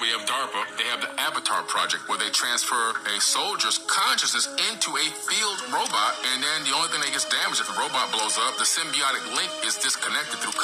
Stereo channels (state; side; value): identical; both; correlation 1.00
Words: have DARPA. They have the Avatar project, where they transfer a soldier's consciousness into a field robot, and then the only thing that gets damaged if the robot blows up, the symbiotic link is disconnected through